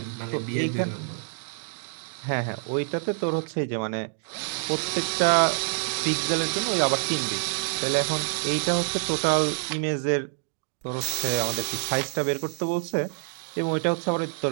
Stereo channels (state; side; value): silent; left; digital silence